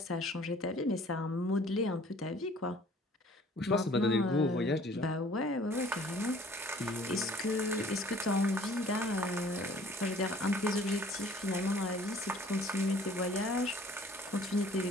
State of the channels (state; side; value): normal; both; correlation 0.53